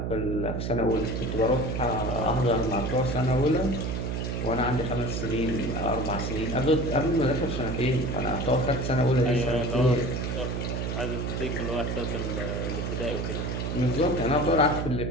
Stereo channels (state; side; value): noise; right; hum, 2 dB below the sound